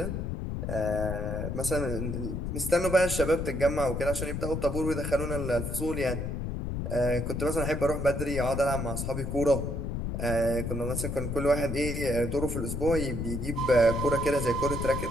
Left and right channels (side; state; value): left; noise; rumble, 3 dB below the sound